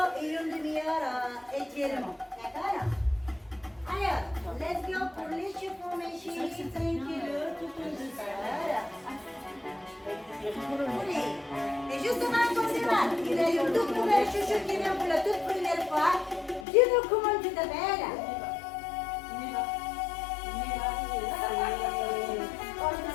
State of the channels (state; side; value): drops out; right; at 16.7 s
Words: et une demi-heure étirement. D'accord? Alors, let's go pour l'échauffement, mes chéris. Tranquille, tout en douceur. Oui. Et justement, comme c'est mal, il y a une toute nouvelle chouchou qui vient pour la toute première fois. Dis-nous comment tu t'appelles. On te